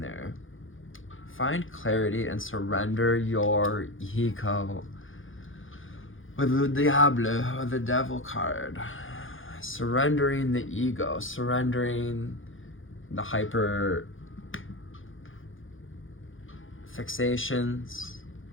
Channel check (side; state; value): right; late; 0.58 ms